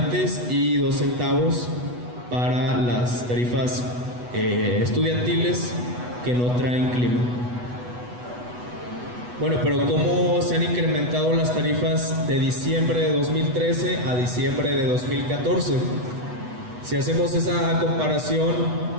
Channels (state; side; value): late; left; 8.1 ms